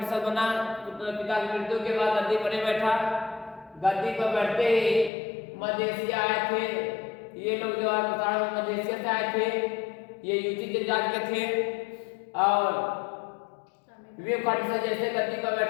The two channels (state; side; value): drops out; right; at 5.1 s